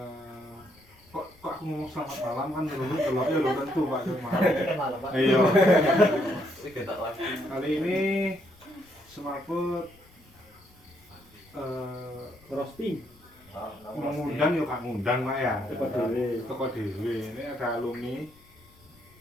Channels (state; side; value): noise; left; rumble, 28 dB below the sound